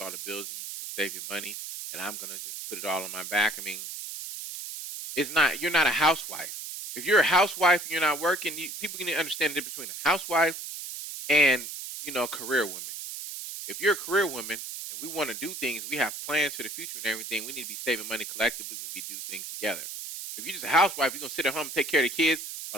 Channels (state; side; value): noise; right; hiss, 8 dB below the sound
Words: all the bills and you just gonna save your money and I'm gonna just put it all on my back. I mean, it's not you're not a housewife. If you're a housewife and you're not working, people can understand the difference between a housewife and a career woman. If you're a career woman and we want to do things, we have plans for the future and everything. We need to be saving money collectively. We need to do things together. If you're just a housewife, you're gonna sit at home and take care of the kids